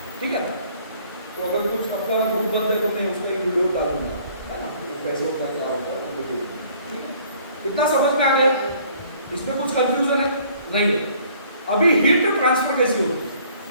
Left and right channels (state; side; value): inverted; both; correlation -0.58